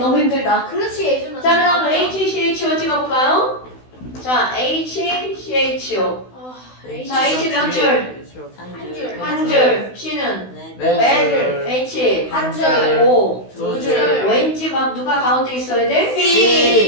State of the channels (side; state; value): right; late; 16 ms